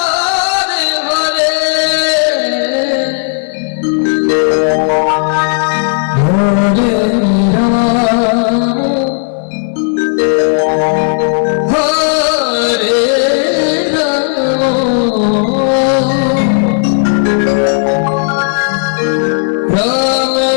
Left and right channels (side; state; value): right; silent; digital silence